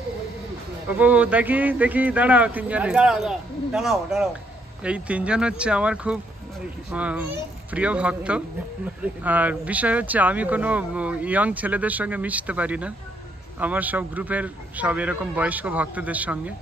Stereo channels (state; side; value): normal; both; correlation 0.72